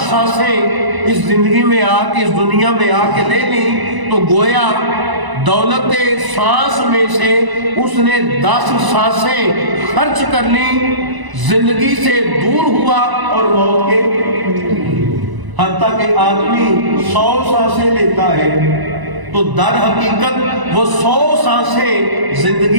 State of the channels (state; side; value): late; left; 1.0 ms